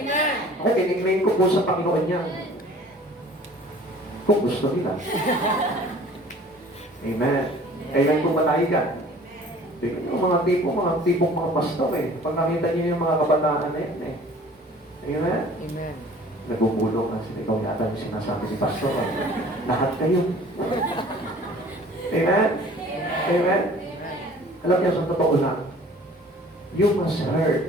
Ako, kinigmain ko po sa Panginoon yan. Kung gusto nila. Amen. Kailan ko matahigan? Tingnan yung mga tipong mga pastor eh. Pag nakita niyo yung mga kabataan na yan eh. Amen? Amen. Nagbubulong na sila. Ikaw yata yung sinasabi ni pastor. Lahat kayo. Amen? Amen? Alam niyo, sa totoo lang, you must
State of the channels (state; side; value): normal; both; correlation 0.49